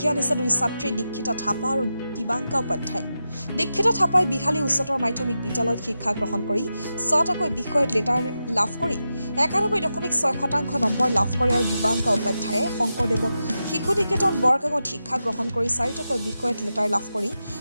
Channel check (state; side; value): inverted; both; correlation -0.90